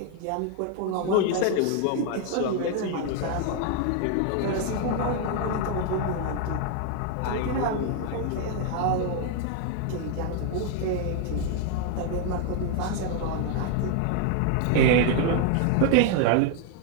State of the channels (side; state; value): both; different; correlation 0.00